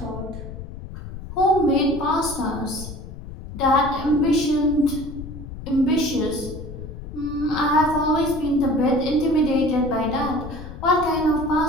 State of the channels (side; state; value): left; noise; rumble, 11 dB below the sound